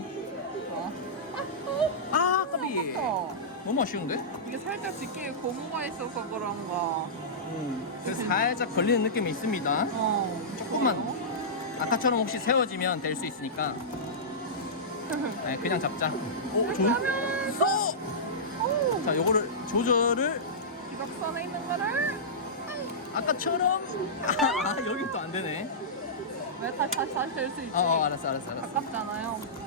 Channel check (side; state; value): both; normal; correlation -0.15